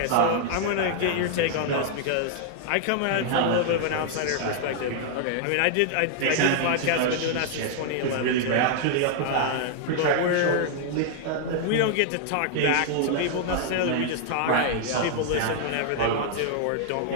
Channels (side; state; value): both; different; correlation 0.00